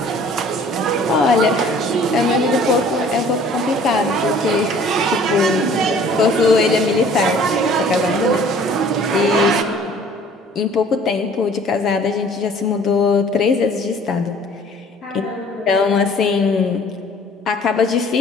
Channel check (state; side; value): normal; both; correlation 0.52